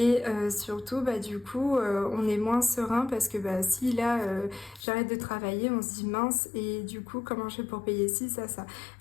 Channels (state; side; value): drops out; right; at 4.9 s